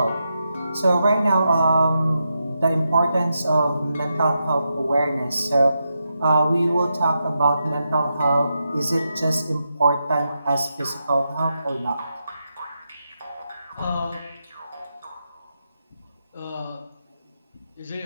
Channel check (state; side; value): inverted; both; correlation -0.86